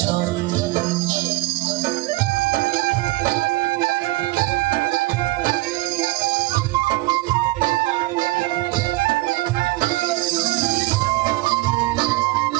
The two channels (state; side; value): quieter; left; 20.3 dB